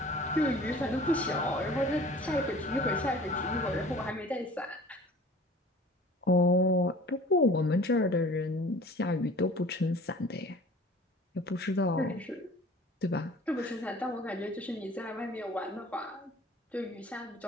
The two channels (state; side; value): normal; both; correlation 0.46